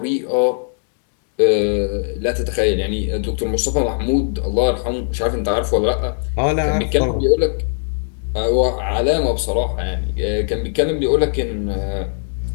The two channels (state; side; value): silent; right; 65 dB below the other